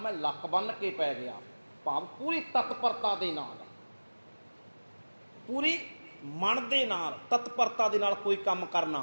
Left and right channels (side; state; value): both; inverted; correlation -1.00